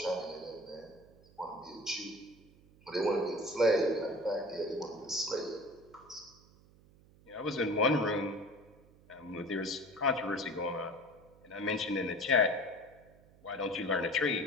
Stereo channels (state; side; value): noise; right; hum, 26 dB below the sound